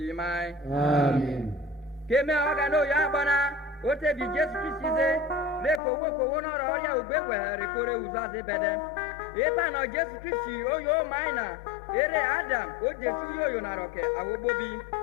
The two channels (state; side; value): drops out; right; at 5.8 s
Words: Amen. Keme ogano ya bana. Ote bi Jésus Christ ze. Le kowo no ro ya ogbewe re kore uzaze bede. Eba no Jésus Christ oyo maina. Ere Adam o Jesu yo na roke awobobi